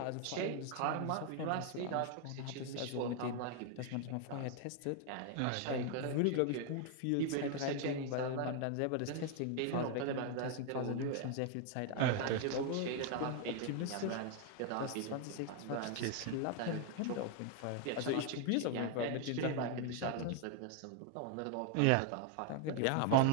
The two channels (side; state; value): both; different; correlation 0.00